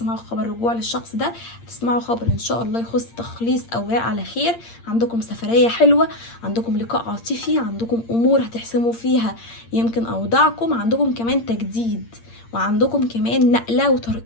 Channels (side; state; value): right; late; 8.7 ms